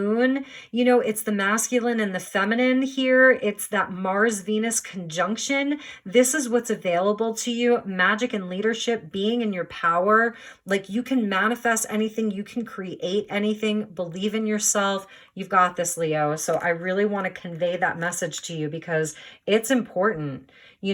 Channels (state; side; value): identical; both; correlation 1.00